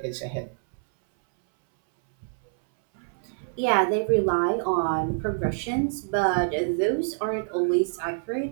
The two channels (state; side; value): silent; left; 61 dB below the other